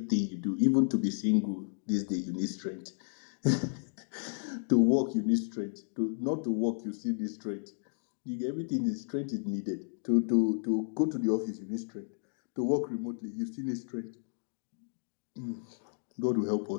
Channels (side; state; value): right; silent; digital silence